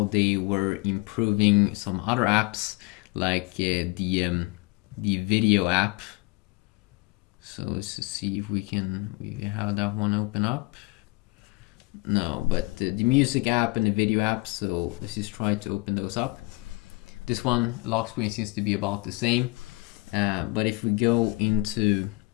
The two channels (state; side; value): quieter; right; 23.8 dB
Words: they were improving some other apps, like the video app. So let's just see if we have that one open up. No, but the music app and the video app. So let's just try to open those up. This one, lock screen, seems to be about the same. But if we go into